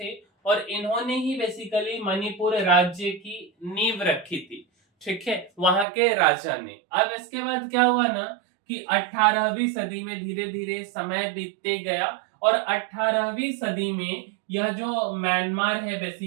और इन्होंने ही बेसिकली मणिपुर राज्य की नींव रखी थी। ठीक है, वहां के राजा ने। अब इसके बाद क्या हुआ ना, कि 18वीं सदी में धीरे धीरे समय बीतते गया, और 18वीं सदी में यह जो म्यांमार है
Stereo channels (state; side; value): drops out; left; at 5.9 s